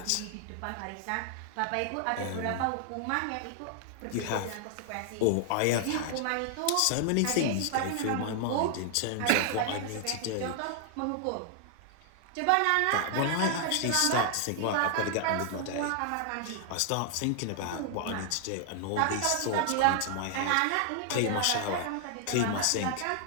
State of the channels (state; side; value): different; both; correlation 0.00